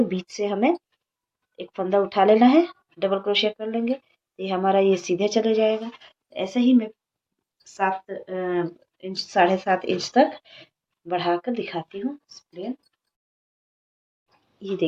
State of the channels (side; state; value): both; identical; correlation 1.00